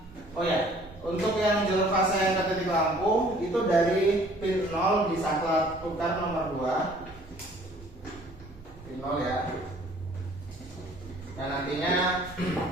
oh ya, untuk yang jalur fasa yang ke titik lampu itu dari pin 0 disangkut tukar nomor 2, pin 0 ya. Dan nantinya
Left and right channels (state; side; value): normal; both; correlation 0.55